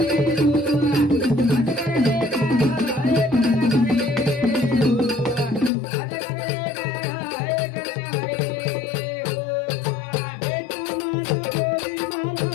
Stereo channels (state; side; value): drops out; right; at 5.7 s